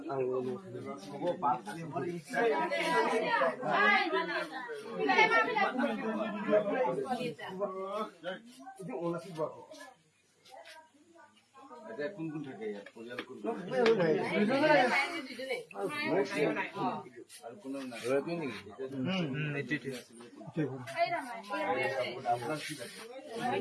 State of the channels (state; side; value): identical; both; correlation 1.00